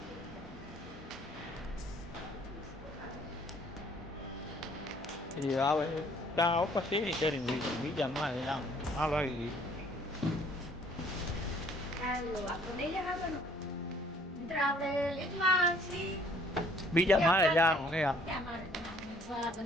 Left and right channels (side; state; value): both; normal; correlation 0.59